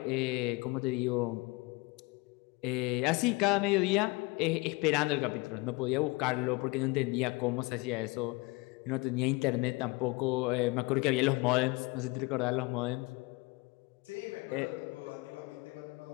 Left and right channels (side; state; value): right; quieter; 25.1 dB